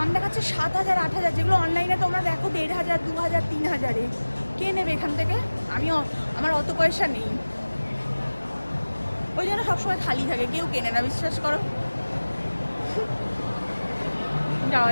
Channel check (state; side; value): inverted; both; correlation -1.00